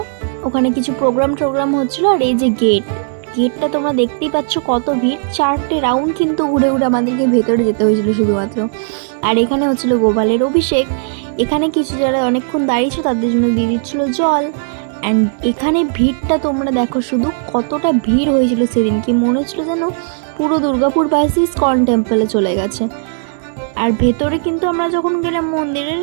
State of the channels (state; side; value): silent; left; digital silence